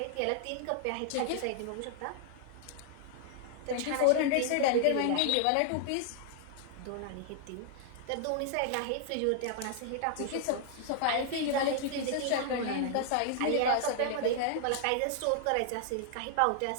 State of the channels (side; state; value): both; different; correlation -0.01